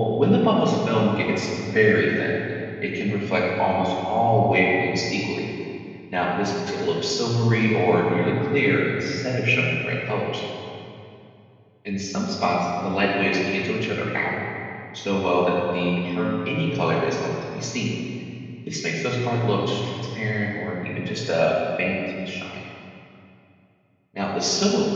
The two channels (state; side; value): identical; both; correlation 1.00